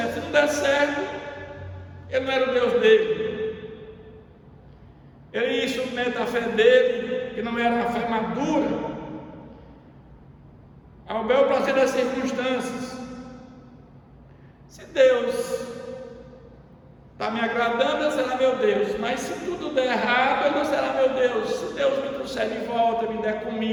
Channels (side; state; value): both; identical; correlation 1.00